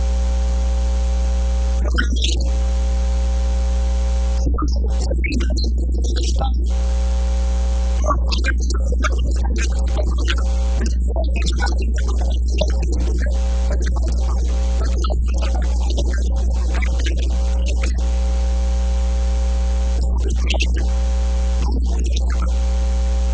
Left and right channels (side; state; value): both; identical; correlation 1.00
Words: ፈተና ማለት እዩ ስለዚ እቲ መረዳእታ ዝህበሉ ነገር እንታይ እዩ የስ አገልጋለ አምላኽ በክልተ ነገር ክትፍተን ትኽእል ኢኻ መጀመርያ አገልጋለ አምላኽ ከም በዓል ሐዋርያት ስለ ዝኾንካ ፈተና ክመፀካ ኸእል እዩ መከራ ዝመፀካ እኮ አገልጋለ ስለ ዝኾንካ ክበሃል ኸእል እዩ ሓቂ እዩ እሱ ግን ጥራይ ኣይኮነን ብውልቁ ንመፀካ እዩ